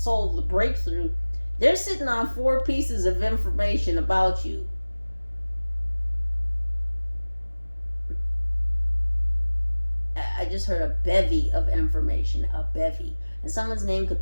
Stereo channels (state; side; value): inverted; both; correlation -1.00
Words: the breakthrough. They're sitting on 4 pieces of information about you. I just heard a bevy of information. A bevy. And someone's name could